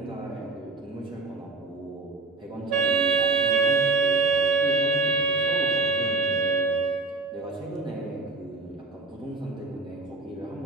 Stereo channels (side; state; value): left; quieter; 3.8 dB